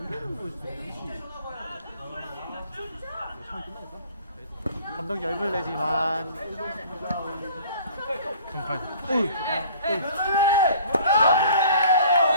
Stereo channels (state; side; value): inverted; both; correlation -0.50